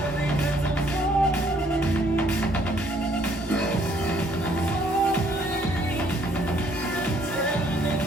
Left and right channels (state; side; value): normal; both; correlation 0.64